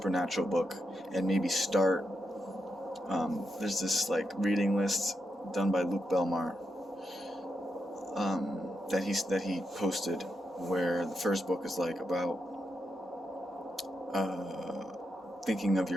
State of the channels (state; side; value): normal; both; correlation 0.84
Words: book and maybe start. There's this like reading list done by Luke Belmar that he posted, where the first book is like about thinking of